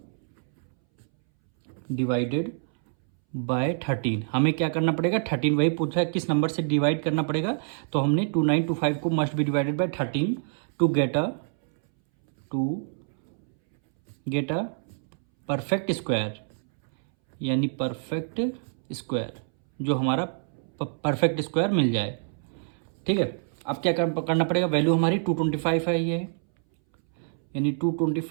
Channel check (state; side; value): silent; left; 60 dB below the other